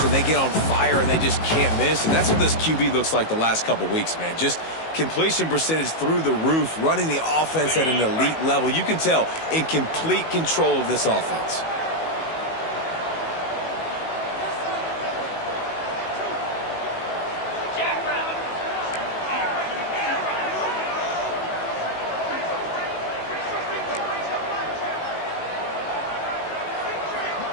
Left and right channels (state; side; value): late; right; 19 ms